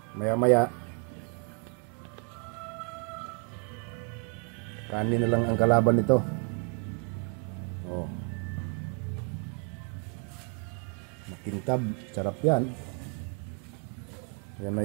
maya maya kanin na lang ang kalaban nito. Oh. Makintab, sarap yan. Yan na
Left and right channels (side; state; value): left; quieter; 35.6 dB